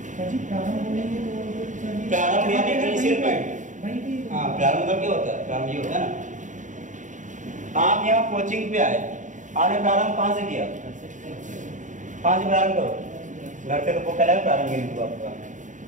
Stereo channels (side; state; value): left; late; 0.36 ms